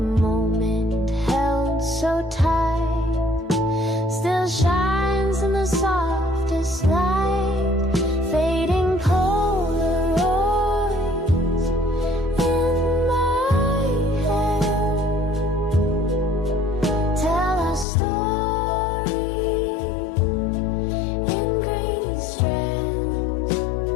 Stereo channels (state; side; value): drops out; right; at 17.9 s